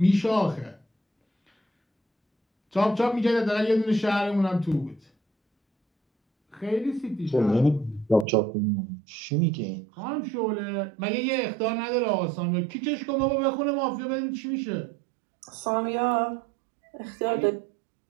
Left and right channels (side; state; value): left; drops out; at 8.2 s